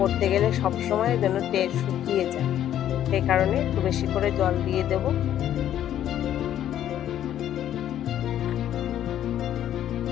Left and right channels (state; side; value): quieter; right; 11.2 dB